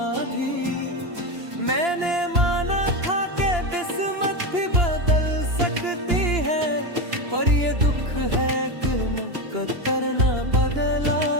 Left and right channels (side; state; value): left; late; 2.9 ms